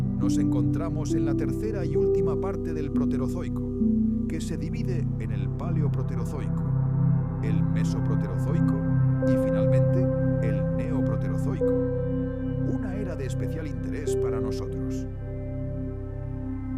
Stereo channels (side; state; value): both; identical; correlation 1.00